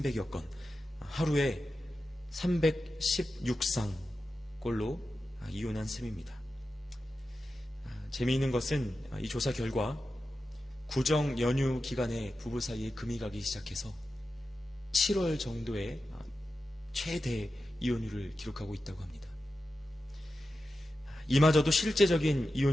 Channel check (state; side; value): normal; both; correlation 0.92